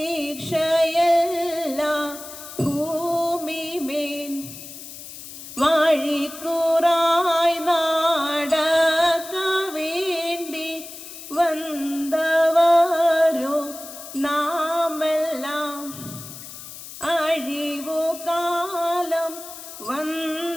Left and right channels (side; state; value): left; noise; hiss, 13 dB below the sound